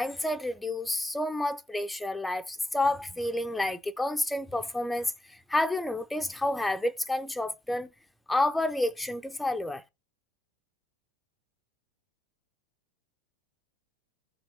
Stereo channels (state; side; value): normal; both; correlation 0.91